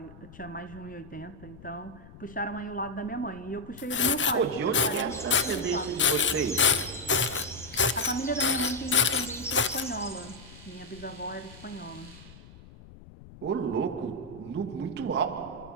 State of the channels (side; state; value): left; noise; rumble, 19 dB below the sound